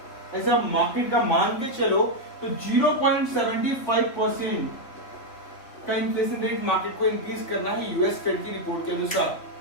ऐसा मार्केट का मान के चलो तो 0.75% का इन्फ्लेशन रेट मार्केट को इंक्रीज करना है यूएस फेड की रिपोर्ट के अनुसार,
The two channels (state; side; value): late; right; 3.6 ms